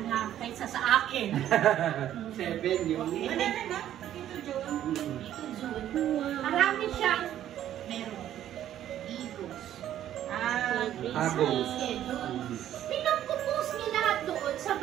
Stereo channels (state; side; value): quieter; left; 11.6 dB